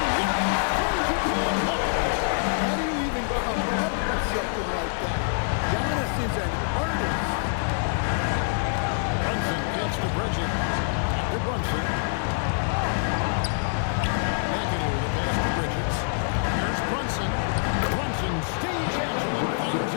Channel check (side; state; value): right; silent; digital silence